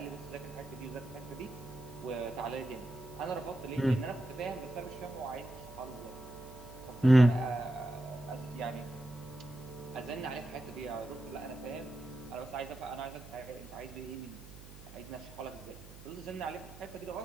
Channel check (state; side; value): noise; right; hum, 16 dB below the sound